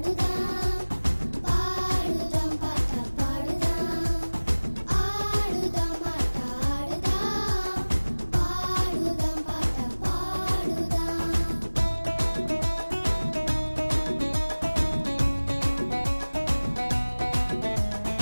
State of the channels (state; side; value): inverted; both; correlation -1.00